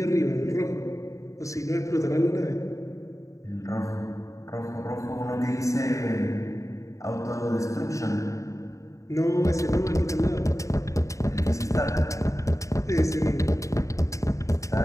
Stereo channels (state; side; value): late; right; 0.15 ms